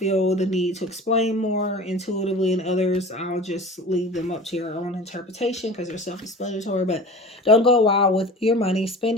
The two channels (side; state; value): both; normal; correlation 0.37